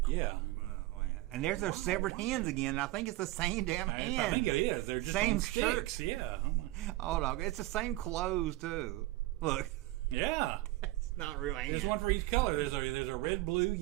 Yeah. Oh, yeah. And there's those severed hands again, and I think it's the same damn hand. I think it is. They're just same on shirt. sticks. Yeah. Oh no, it's the same clothes too. Look. Yeah. It's not real hands. There's one for each color. There's a red, blue,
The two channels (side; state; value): left; quieter; 18.2 dB